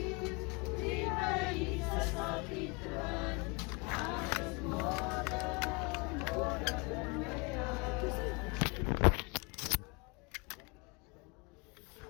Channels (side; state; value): right; quieter; 29.8 dB